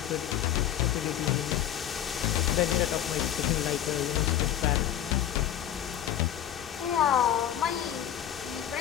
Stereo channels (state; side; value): quieter; right; 10.9 dB